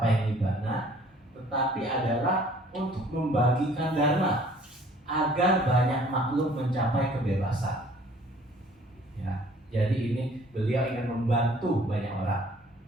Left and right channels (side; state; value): both; normal; correlation 0.55